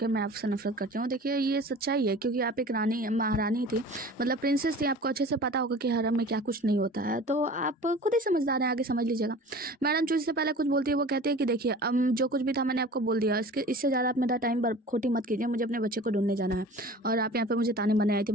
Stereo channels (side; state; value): both; normal; correlation 0.41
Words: मैं आपसे नफरत करती हूँ। देखिए ये सच्चाई है, क्योंकि आप एक रानी महारानी थी, मतलब प्रिंसेस थी, आपको अच्छे से पता होगा कि हरम में क्या कुछ नहीं होता है, तो आप खुद ही समझदार हैं, आगे समझ लीजिएगा। मैडम जू से पहले कुछ बोलती है, वो कहती है कि देखिए जो कुछ भी था मैंने आपको बोल दिया, इससे ज़्यादा आप मेरा टाइम खोटी मत कीजिए, मुझे अपने बच्चे को ढूंढने जाना है और आप यहाँ पे मुझे ताने मारने आई थी,